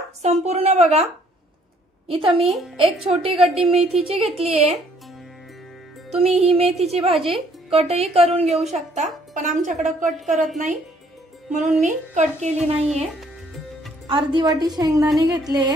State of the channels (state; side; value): normal; both; correlation 0.63